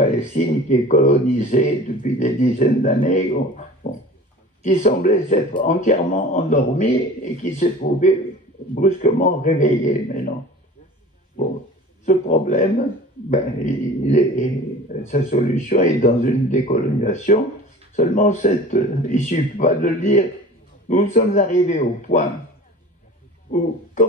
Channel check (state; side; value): normal; both; correlation 0.41